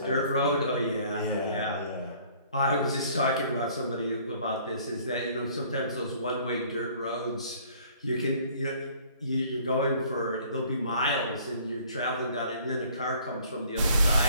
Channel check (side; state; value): both; inverted; correlation -0.57